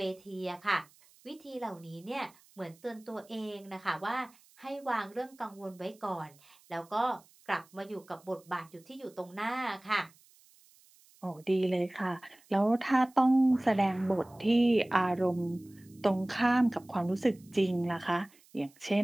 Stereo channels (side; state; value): right; noise; hiss, 28 dB below the sound